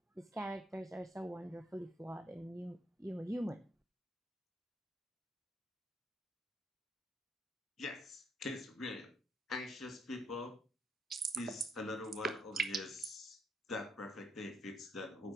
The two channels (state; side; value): normal; both; correlation 0.74